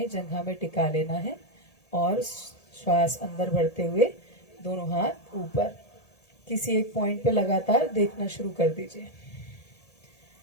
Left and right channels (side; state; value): right; late; 1.8 ms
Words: जंघा में टिका लेना है और श्वास अंदर बढ़ते हुए दोनों हाथ ऊपर। किसी एक पॉइंट पे लगातार देखना शुरू कर दीजिए।